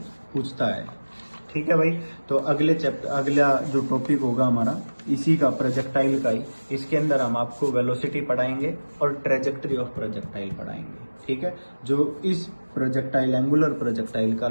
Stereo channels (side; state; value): both; inverted; correlation -1.00